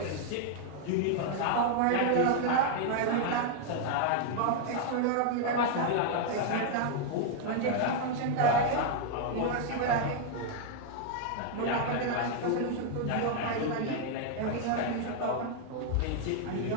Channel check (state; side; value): different; both; correlation 0.00